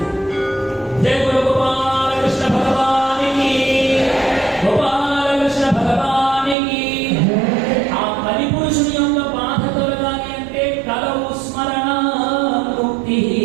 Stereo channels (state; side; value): drops out; left; at 6.6 s